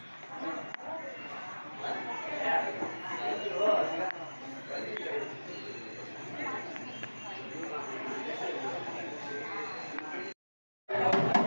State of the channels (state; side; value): inverted; both; correlation -1.00